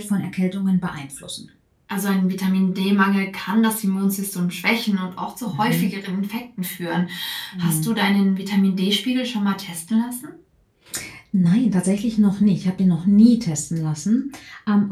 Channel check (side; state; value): both; identical; correlation 1.00